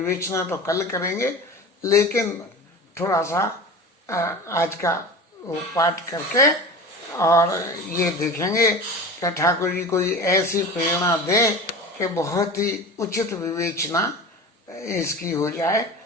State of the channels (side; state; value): both; normal; correlation 0.33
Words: तो कल करेंगे, लेकिन थोड़ा सा आज का वो पाठ करके और ये देखेंगे कि ठाकुर जी कोई ऐसी प्रेरणा दे कि बहुत ही उचित विवेचना इसकी हो जाए।